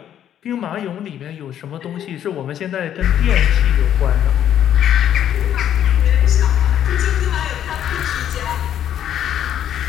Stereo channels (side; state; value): right; quieter; 10.3 dB